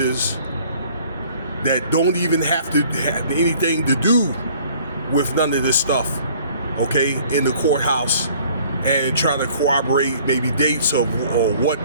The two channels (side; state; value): both; inverted; correlation -0.55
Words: that don't even have to have anything to do with none of this stuff, okay, in the courthouse, and try to corroborate maybe dates or what